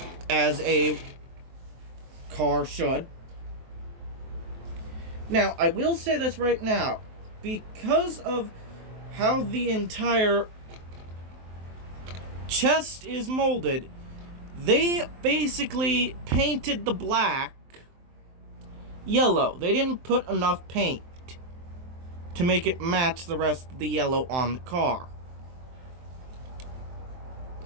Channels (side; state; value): left; late; 23 ms